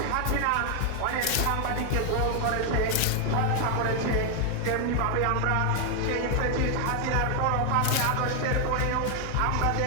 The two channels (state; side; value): different; both; correlation 0.00